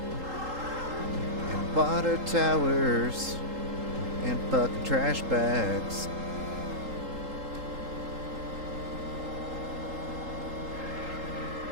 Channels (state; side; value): late; left; 3.8 ms